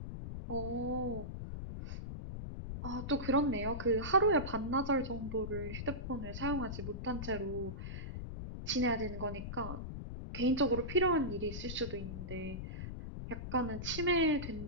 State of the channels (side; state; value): left; noise; rumble, 6 dB below the sound